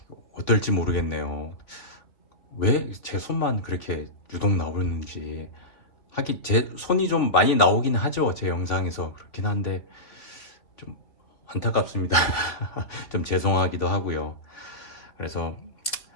어떨지 모르겠네요. 왜 제 손만 그렇게 유독 나오는지. 하긴 제 손이 좀 많이 나오긴 하죠, 제 영상에서. 그렇긴 한데 좀 안타깝습니다. 좀 죄송하기도 하고요. 그래서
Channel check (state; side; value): late; right; 3.5 ms